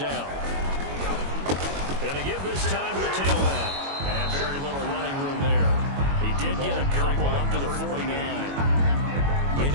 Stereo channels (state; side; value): late; left; 22 ms